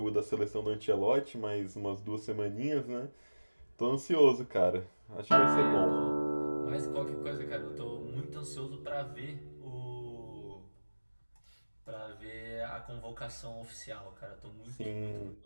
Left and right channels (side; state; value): both; inverted; correlation -1.00